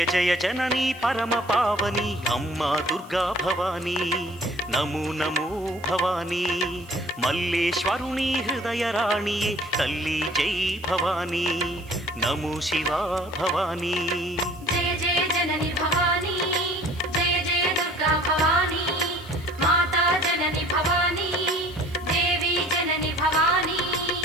జయ జననీ పరమ పావని అమ్మా దుర్గా భవానీ నమో నమో భవానీ మల్లేశ్వరుని హృదయ రాణియే తల్లి జై భవానీ నమో శివా భవానీ జయ జయ జనని భవానీ జయ జయ దుర్గా భవానీ మాతా జనని భవానీ దేవి జనని భవానీ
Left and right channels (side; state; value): right; noise; hiss, 25 dB below the sound